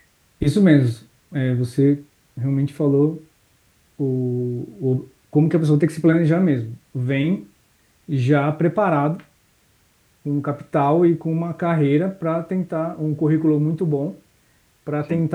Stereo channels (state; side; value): identical; both; correlation 1.00